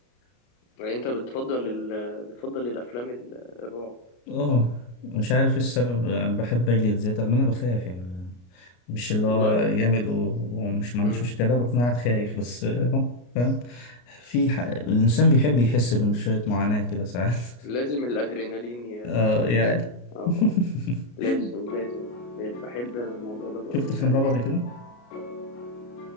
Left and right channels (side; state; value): right; late; 33 ms